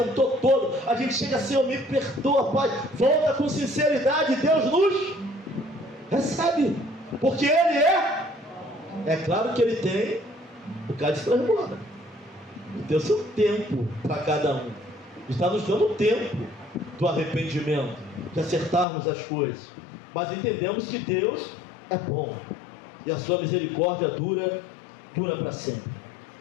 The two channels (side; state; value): right; drops out; at 18.9 s